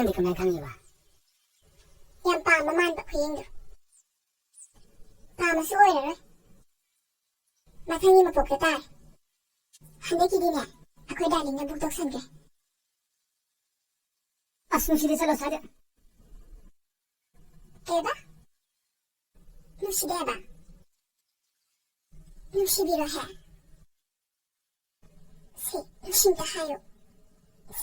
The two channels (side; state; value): both; identical; correlation 1.00